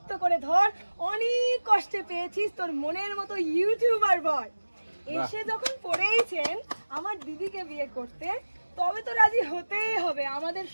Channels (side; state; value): both; inverted; correlation -1.00